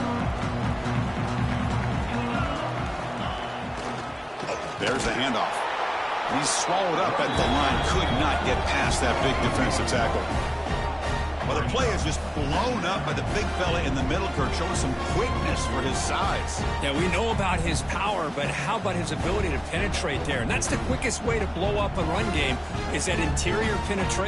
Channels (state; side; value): identical; both; correlation 1.00